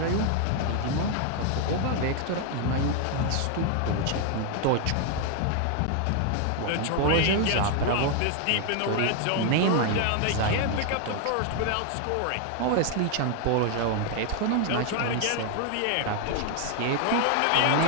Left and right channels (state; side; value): different; both; correlation 0.00